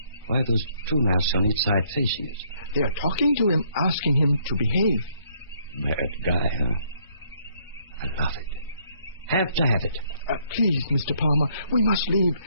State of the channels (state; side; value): inverted; both; correlation -0.68